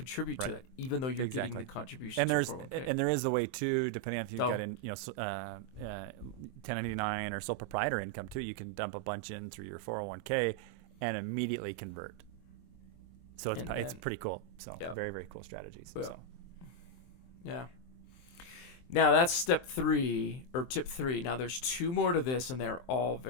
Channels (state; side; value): late; right; 23 ms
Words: to that, even though you're getting the contribution. And there is a way too, depending on if you've got 1099 or sole proprietor income too. You can dump a bunch in through your 401k and immediately convert. So it's pretty cool. So very, very cool strategies. Well, yeah. Now that's step 3 or tip 3. Now there's 2 more to this, and they're all